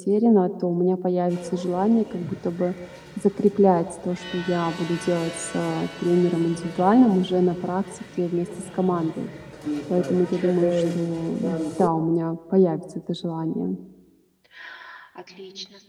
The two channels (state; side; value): identical; both; correlation 1.00